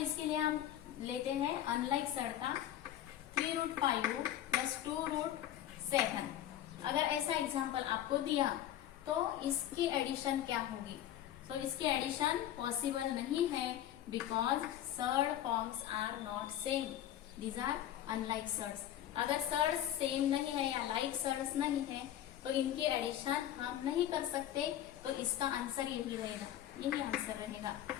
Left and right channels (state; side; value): quieter; right; 11.9 dB